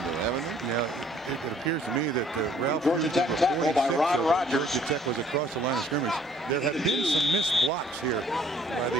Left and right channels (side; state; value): both; normal; correlation 0.59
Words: though, haven't they? Yeah, it appears to me that Ralph Georgia Tech tackle by Ron Rogers. Georgia Tech was across the line of scrimmage. There have been some missed blocks here by